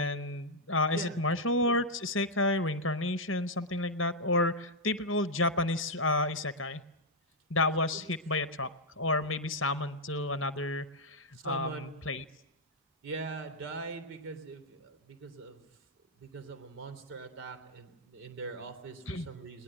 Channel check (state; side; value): normal; both; correlation -0.03